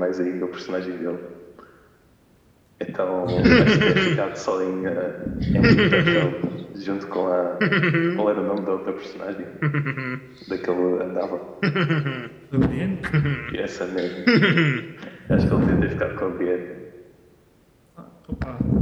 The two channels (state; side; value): identical; both; correlation 1.00